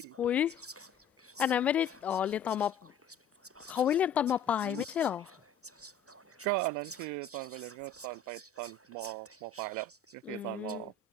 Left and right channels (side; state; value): right; quieter; 4.9 dB